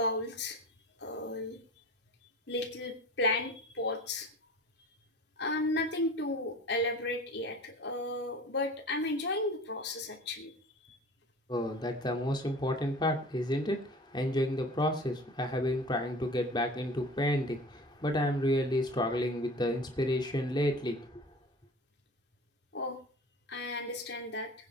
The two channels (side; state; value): both; normal; correlation 0.39